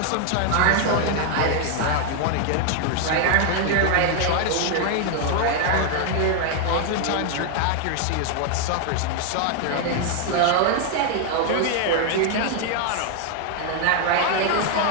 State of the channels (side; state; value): both; different; correlation 0.00